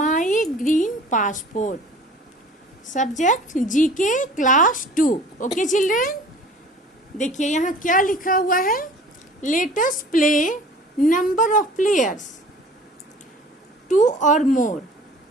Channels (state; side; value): normal; both; correlation 0.47